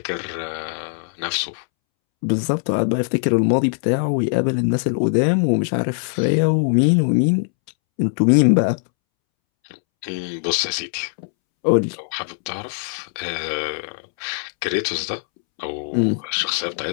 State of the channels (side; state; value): right; silent; 65 dB below the other